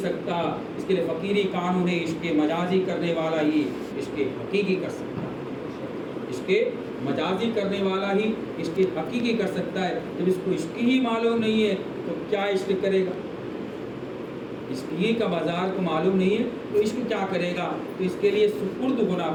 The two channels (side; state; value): both; identical; correlation 1.00